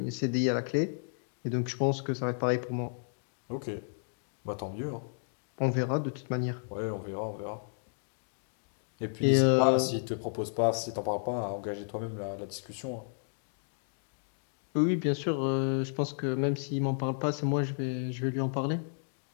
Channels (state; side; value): silent; right; digital silence